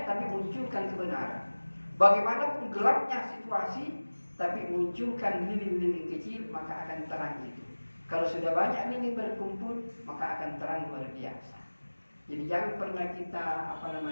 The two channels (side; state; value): both; inverted; correlation -1.00